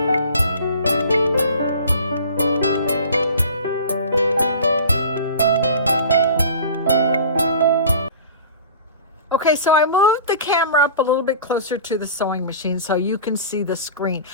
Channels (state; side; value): inverted; both; correlation -0.41